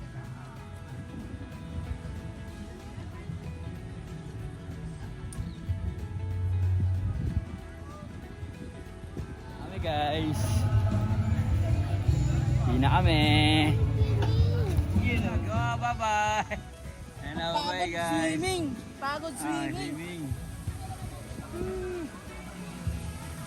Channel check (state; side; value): identical; both; correlation 1.00